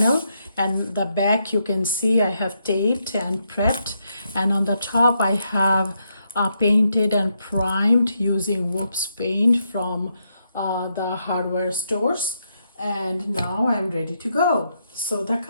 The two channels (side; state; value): both; inverted; correlation -0.80